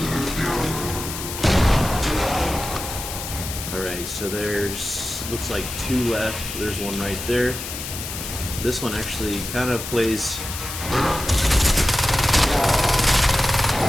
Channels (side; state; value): left; noise; hiss, 7 dB below the sound